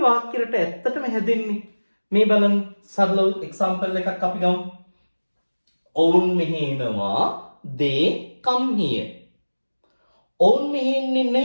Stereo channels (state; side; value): inverted; both; correlation -1.00